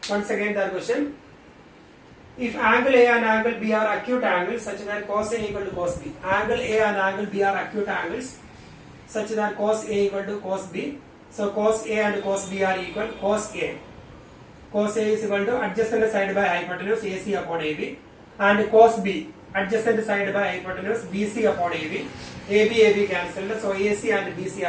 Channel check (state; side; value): identical; both; correlation 1.00